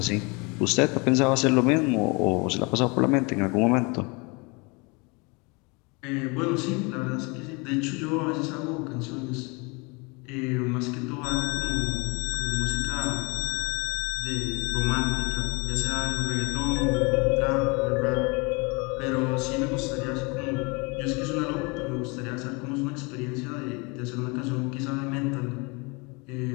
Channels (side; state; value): right; quieter; 29.1 dB